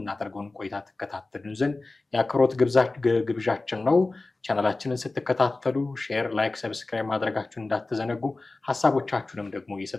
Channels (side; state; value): right; quieter; 3.3 dB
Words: ቆይታ ተከታተሉን ዘንድ የአክብሮት ግብዣችን ነው። ቻናላችንን ስትከታተሉ ሼር፣ ላይክ፣ ሰብስክራይብ ማድረጋችሁን እንዳትዘነጉ፣ ሀሳቦቻችሁንም ደግሞ